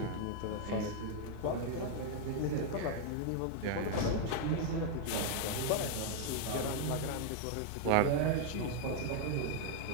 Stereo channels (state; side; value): different; both; correlation 0.00